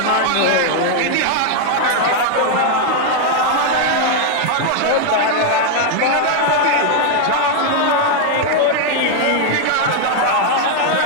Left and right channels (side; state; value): both; different; correlation 0.00